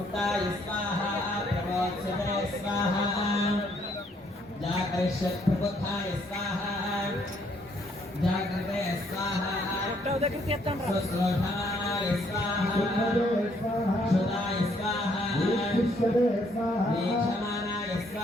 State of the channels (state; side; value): normal; both; correlation 0.68